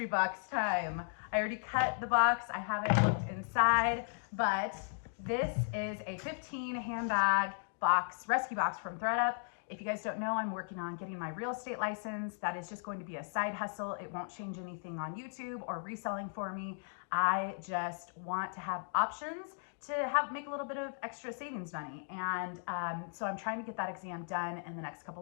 box time. I already cut the box. I haven't looked inside, but this is a 15 handbag box, rescue box from ThredUp. If you guys don't know, I'm working on getting my real estate license. That is just going to be a side hustle. It won't change anything on YouTube or reselling for me. I just want to have options to make a little bit of extra savings money. And so I'm trying to get that exam done in the next couple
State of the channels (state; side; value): silent; right; digital silence